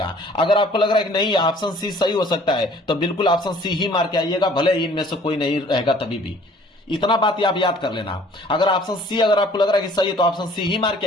अगर आपको लग रहा है कि नहीं ऑप्शन सी सही हो सकता है तो बिल्कुल ऑप्शन सी ही मार के आइएगा, भले ही इनमें से कोई नहीं रहेगा तभी भी। इतना बात आप याद कर लेना, अगर ऑप्शन सी अगर आपको लग रहा है कि सही है तो ऑप्शन सी ही मार के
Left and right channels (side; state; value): both; normal; correlation 0.54